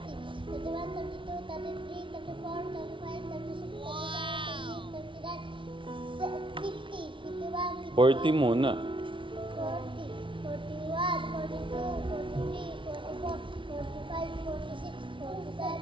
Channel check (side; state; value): left; late; 0.25 ms